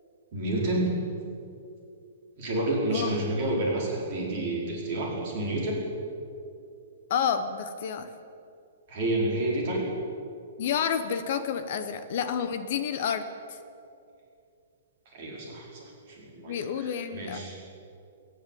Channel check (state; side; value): inverted; both; correlation -0.33